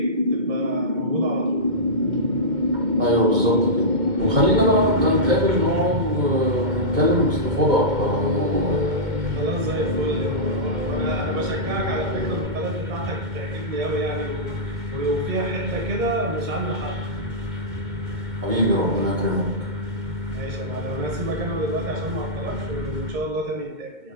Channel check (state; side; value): late; left; 2.2 ms